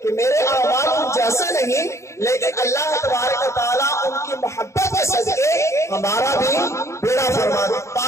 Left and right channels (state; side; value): late; right; 0.14 ms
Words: کہ میرے اعمال ان جیسے نہیں لیکن اللہ تبارک و تعالیٰ ان کی محبت کے صدقے ہمارا بھی بیڑا